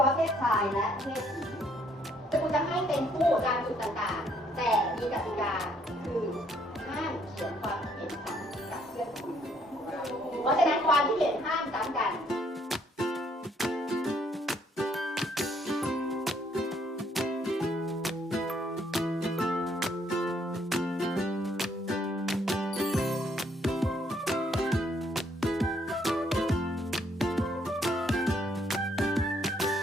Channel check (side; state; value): both; normal; correlation 0.68